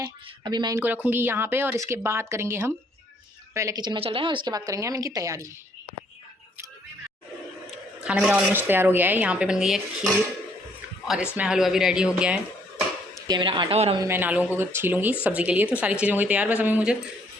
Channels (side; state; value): both; normal; correlation 0.66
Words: अभी मैं इनको रखूँगी यहाँ पे और इसके बाद करेंगे हम, पहले किचन में चल रहे हैं और इसके बाद करेंगे हम इनकी तैयारी। खाना मेरा ऑलमोस्ट तैयार हो गया है। यहाँ पे बन गई है खीर और इसमें हलवा भी रेडी हो गया है। ये मेरा आटा, और अभी मैं आलूओं को छीलूंगी सब्ज़ी के लिए। तो सारी चीज़ें हो गई तैयार, बस अभी मुझे